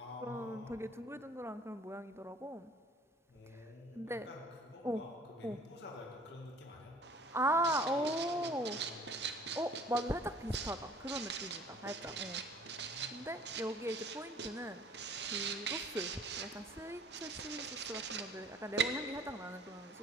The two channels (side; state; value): both; normal; correlation 0.52